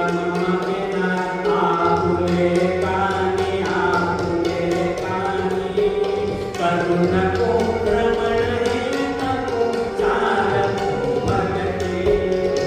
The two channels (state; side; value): identical; both; correlation 1.00